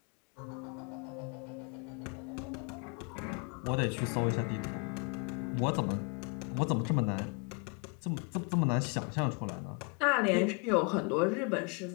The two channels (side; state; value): right; quieter; 34.1 dB